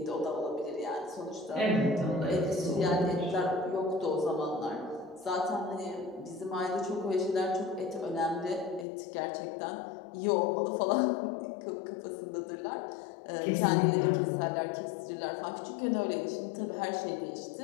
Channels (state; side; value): drops out; right; at 8.8 s